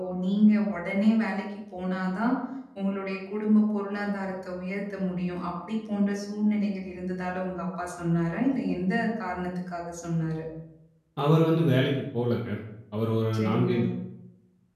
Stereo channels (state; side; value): identical; both; correlation 1.00